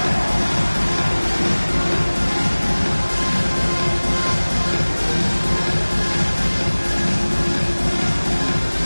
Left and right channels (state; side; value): inverted; both; correlation -1.00